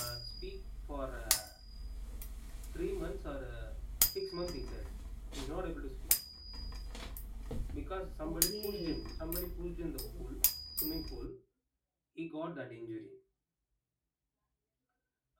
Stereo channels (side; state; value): both; identical; correlation 1.00